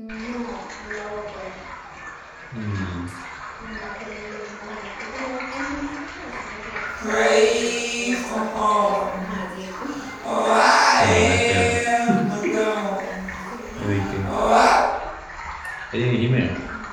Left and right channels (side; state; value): both; identical; correlation 1.00